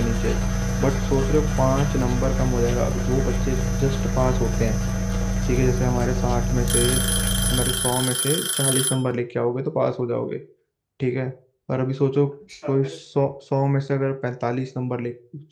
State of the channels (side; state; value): both; identical; correlation 1.00